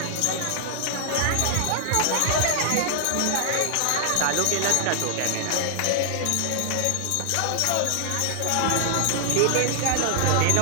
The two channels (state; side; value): different; both; correlation 0.00